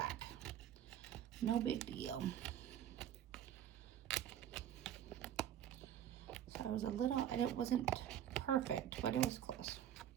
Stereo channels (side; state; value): left; quieter; 10.5 dB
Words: No big deal. So I was a little, it wasn't perfect, but it was close.